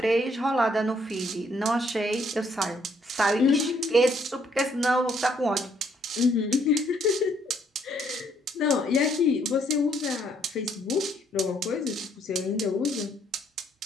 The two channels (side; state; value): both; normal; correlation 0.68